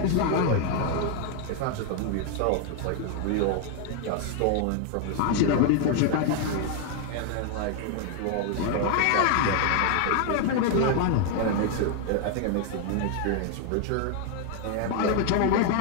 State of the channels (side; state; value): both; different; correlation 0.00